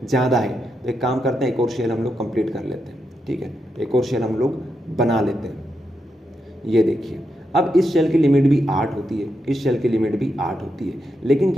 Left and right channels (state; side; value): normal; both; correlation 0.84